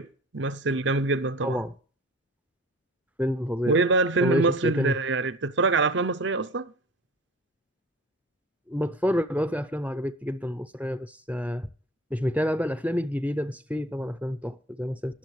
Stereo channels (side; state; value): both; normal; correlation 0.42